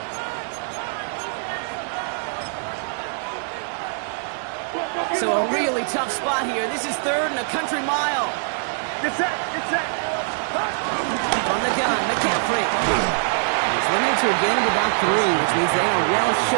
So a really tough spot here. This is 3rd and a country mile. Get set. On the gun, McCaffrey. He's limited to a gain of about 3, which means they are well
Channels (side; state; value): left; silent; digital silence